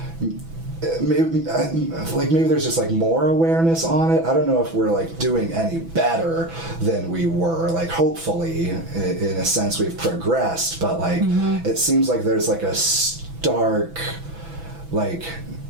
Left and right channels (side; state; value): left; late; 6.0 ms